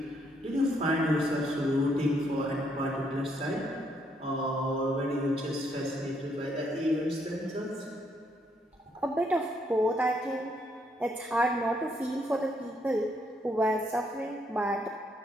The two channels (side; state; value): both; normal; correlation 0.73